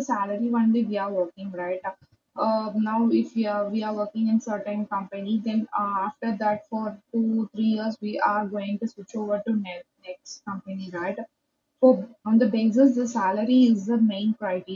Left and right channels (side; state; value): both; identical; correlation 1.00